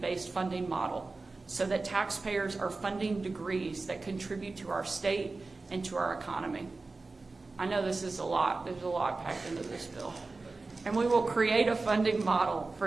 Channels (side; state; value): left; quieter; 3.6 dB